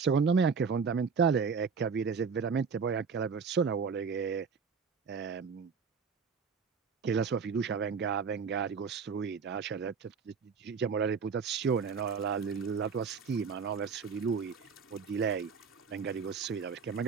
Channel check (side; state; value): left; quieter; 5.7 dB